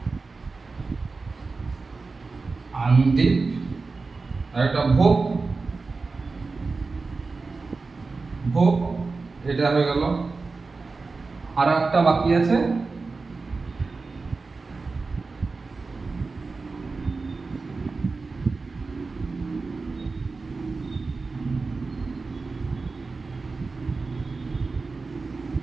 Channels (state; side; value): quieter; left; 4.0 dB